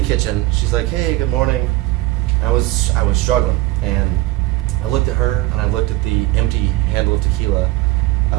kitchen. She's like, "Hey, good morning." I was struggling, and I looked at her and I looked at the empty handle of tequila,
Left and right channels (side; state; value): left; quieter; 18.3 dB